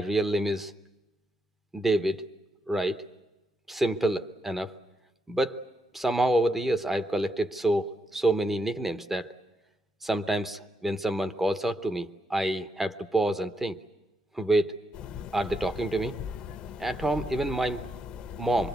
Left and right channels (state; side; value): normal; both; correlation 0.81